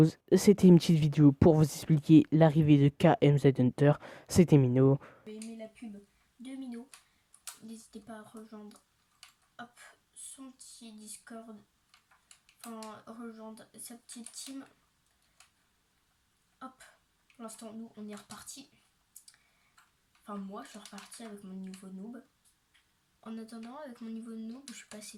C'était une petite vidéo pour vous expliquer l'arrivée de KMZ Hunter. C'était Mino. Vous avez aimé la pub de Mino, n'hésitez pas à rejoindre son petit Discord, enfin rejoindre sa petite team. Hop, pour l'instant nous on est reparti. Enfin moi je suis reparti avec mon niveau noob. En attendant, avec mon niveau noob, je suis passé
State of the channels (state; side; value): identical; both; correlation 1.00